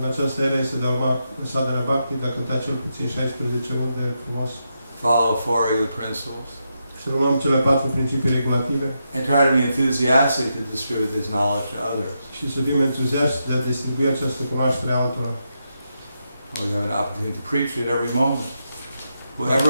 această era este de a urma sadhana bhakti, de a cânta cel puțin 16 runde frumos. Follow 4 of the principles. Să urmăm cele 4 principii regulative and try to be enthusiastic to distribute this knowledge to others. și să fim entuziaști de a distribui această cunoaștere altora. We have an opportunity to preach at every moment. Whoever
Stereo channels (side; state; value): both; inverted; correlation -0.84